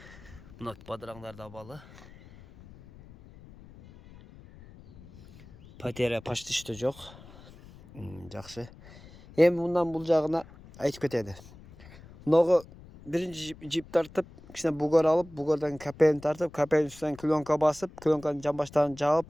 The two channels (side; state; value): left; noise; rumble, 20 dB below the sound